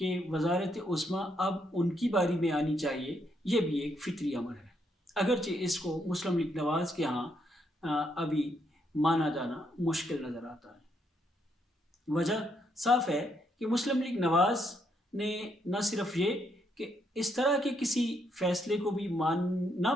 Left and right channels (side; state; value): both; normal; correlation 0.75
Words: وزارت عظمیٰ اب ان کی باری میں آنی چاہیے، یہ بھی ایک فطری امر ہے، اگرچہ اس کو مسلم لیگ نواز کے ہاں ابھی مانا جانا مشکل نظر آتا ہے۔ وجہ صاف ہے کہ مسلم لیگ نواز نے نہ صرف یہ کہ اس طرح کے کسی فیصلے کو بھی نہ